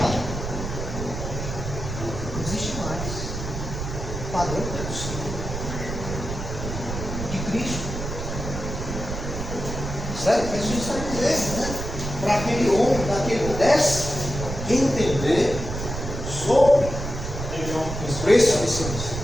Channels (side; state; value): right; noise; rumble, 6 dB below the sound